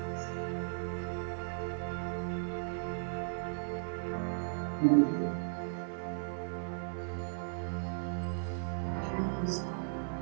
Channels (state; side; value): silent; left; 54 dB below the other